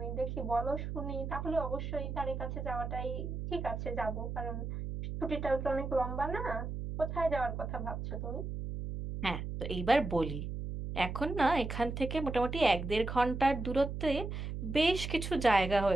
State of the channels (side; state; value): right; noise; hum, 5 dB below the sound